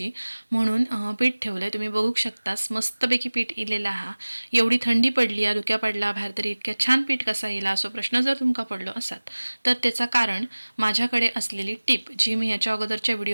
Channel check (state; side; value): inverted; both; correlation -1.00